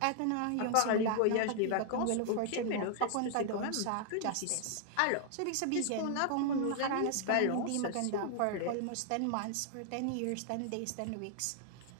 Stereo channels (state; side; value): different; both; correlation 0.00